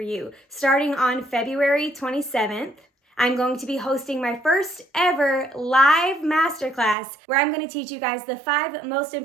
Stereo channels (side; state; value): left; drops out; at 7.0 s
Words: you. Starting on February 27th, I'm going to be hosting my first ever live masterclass where I'm going to teach you guys the 5 most